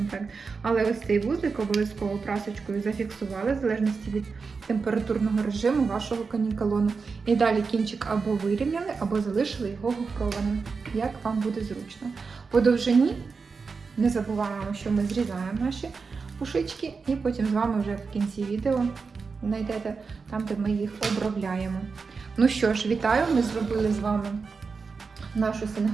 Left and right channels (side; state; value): left; quieter; 4.9 dB